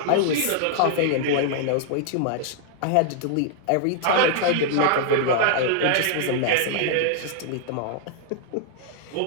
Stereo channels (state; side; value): different; both; correlation -0.01